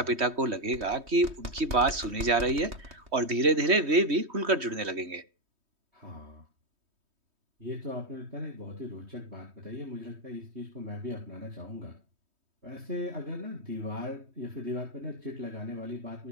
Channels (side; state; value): left; late; 3.2 ms